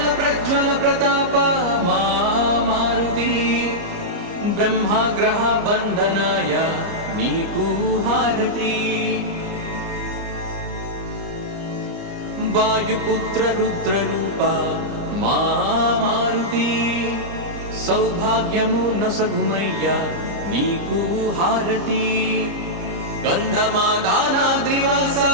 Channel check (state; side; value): late; left; 30 ms